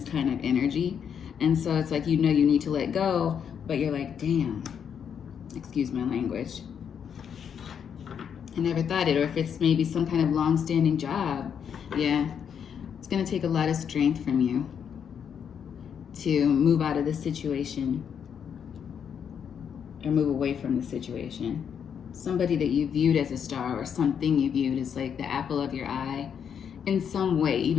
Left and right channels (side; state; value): right; quieter; 7.8 dB